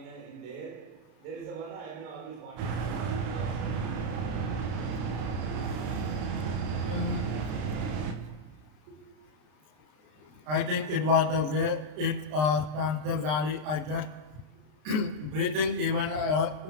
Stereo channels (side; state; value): left; late; 33 ms